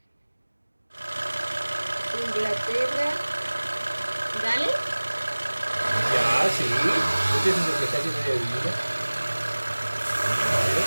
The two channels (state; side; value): inverted; both; correlation -1.00